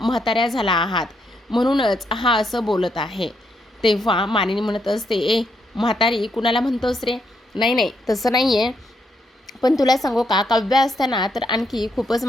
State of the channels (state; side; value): normal; both; correlation 0.77